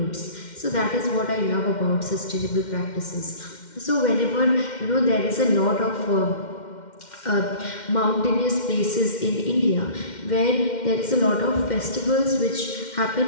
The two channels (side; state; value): right; late; 2.1 ms